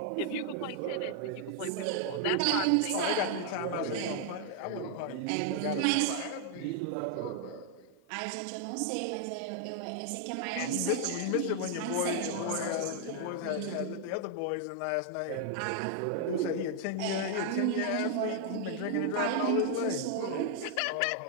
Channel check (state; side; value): different; both; correlation 0.00